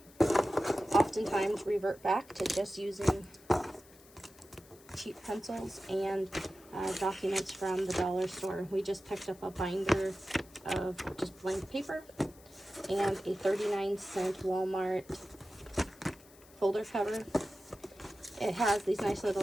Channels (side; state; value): left; noise; hiss, 25 dB below the sound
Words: oftentimes revert back to just using cheap pencils and documents from the dollar store. We just picked up a binder of just blank paper and a 39-cent Walmart folder cover. It has these nice